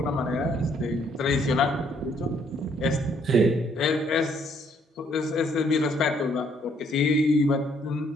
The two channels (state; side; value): normal; both; correlation 0.67